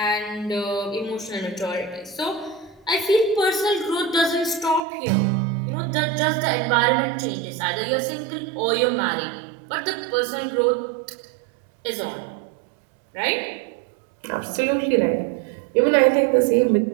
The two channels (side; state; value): left; drops out; at 4.8 s